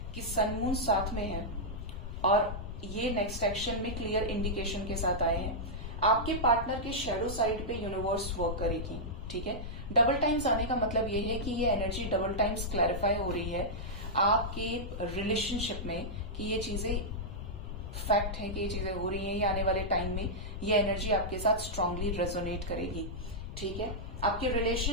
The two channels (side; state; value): left; noise; rumble, 8 dB below the sound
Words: कि सन मून साथ में है और ये नेक्स्ट एक्शन में क्लियर इंडिकेशन के साथ आए हैं। आपके पार्टनर के शेडो साइड पे यूनिवर्स वर्क करेगी। ठीक है, डबल टाइम्स आने का मतलब ये है कि ये एनर्जी डबल टाइम्स क्लैरिफाई हो रही है आपके रिलेशनशिप में कि ये चीजें फैक्ट है कि ये चीजें हो रही हैं, ये आने वाले टाइम में ये एनर्जी आपके साथ स्ट्रांगली रेजोनेट करेगी। ठीक है, आपके